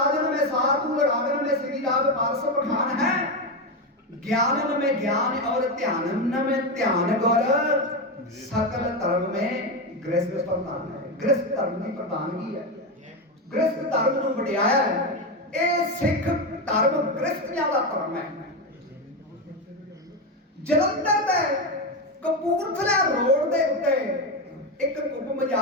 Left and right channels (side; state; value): both; normal; correlation 0.12